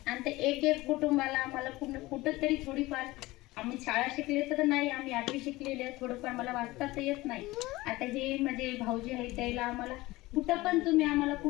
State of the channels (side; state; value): right; quieter; 19.7 dB